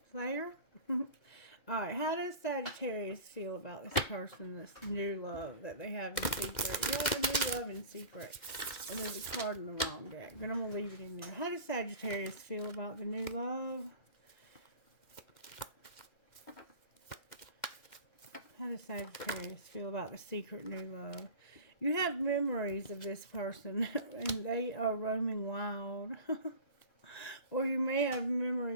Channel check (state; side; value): late; right; 2.1 ms